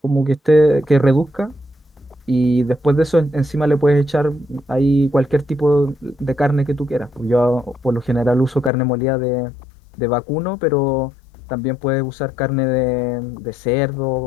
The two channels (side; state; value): right; drops out; at 8.7 s